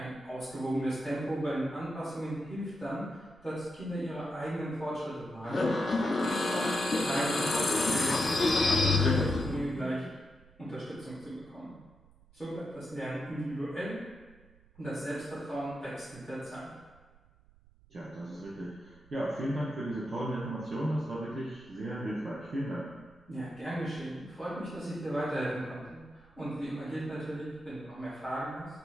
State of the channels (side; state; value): right; noise; rumble, 26 dB below the sound